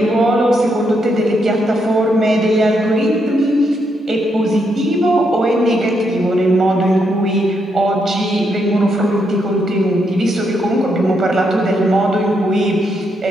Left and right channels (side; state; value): both; normal; correlation 0.79